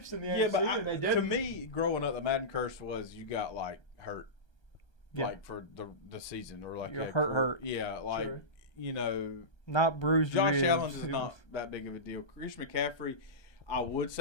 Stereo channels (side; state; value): right; late; 1.3 ms